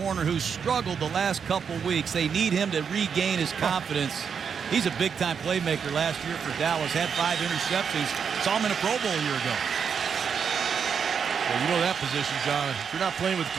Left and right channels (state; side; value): quieter; left; 6.7 dB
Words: who's struggled the last couple weeks. They need him to regain his confidence. He's a big-time playmaker last year for Dallas. Had 5 interceptions. Saw him in a Pro Bowl a year ago. Well, you know that position, John. If you're not playing with